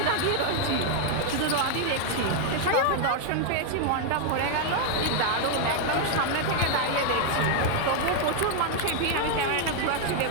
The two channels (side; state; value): both; different; correlation 0.00